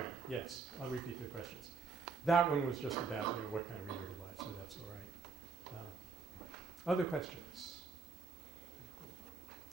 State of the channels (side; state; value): left; quieter; 4.8 dB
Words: Yes, I'll repeat the questions. That one was just about what kind of reader to buy, so that's all right. Other questions?